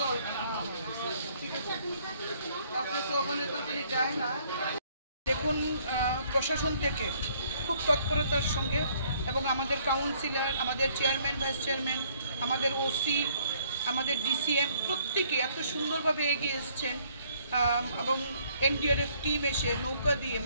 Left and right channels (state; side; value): inverted; both; correlation -0.64